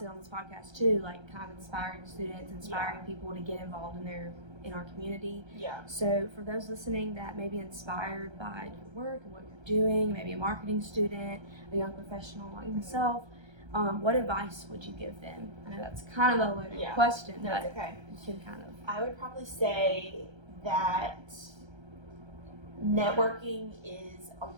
on this podcast too, like, kind of inspiring students, inspiring people to get involved in our community. Yeah. So for those listening that may be inspired by your work and what you're doing, maybe a marketing student, a young professional like myself, what advice would you give them? I know that's kind of a loaded question, but it's okay. You can kind of. I would probably say that networking is a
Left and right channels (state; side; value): late; left; 1.3 ms